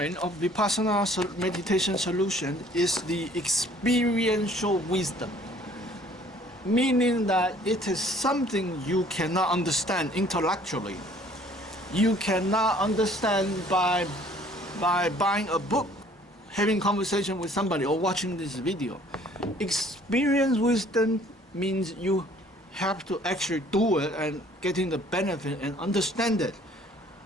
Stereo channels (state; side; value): normal; both; correlation 0.56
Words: of Vipassana meditation solution is the experiential wisdom, meaning that it is something you cannot understand intellectually. You cannot understand by buying a book, having conversation with somebody, or watching this video. Experience wisdom means you have to actually do it and getting the benefit and understand it.